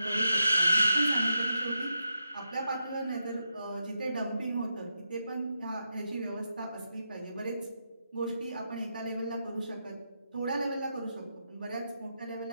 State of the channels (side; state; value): both; inverted; correlation -0.85